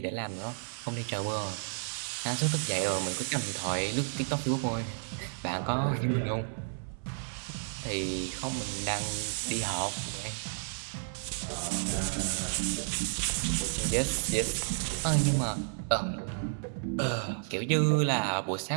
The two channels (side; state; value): left; silent; 57 dB below the other